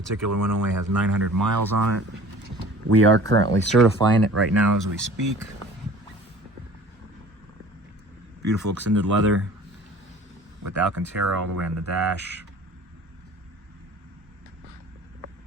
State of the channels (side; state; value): both; normal; correlation 0.45